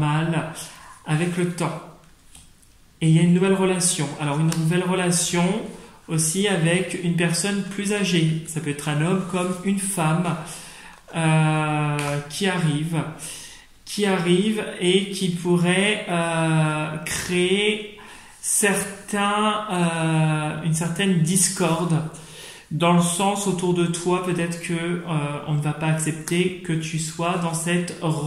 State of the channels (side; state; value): both; identical; correlation 1.00